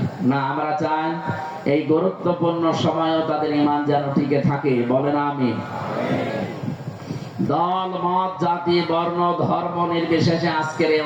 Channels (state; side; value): identical; both; correlation 1.00